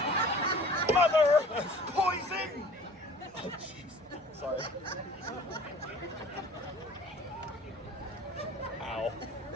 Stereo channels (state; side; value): normal; both; correlation 0.47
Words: Mother! Poison! Oh, jeez. Sorry. Ow.